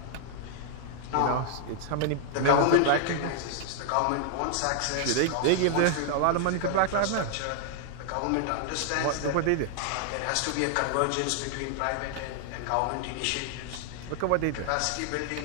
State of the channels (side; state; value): both; different; correlation 0.00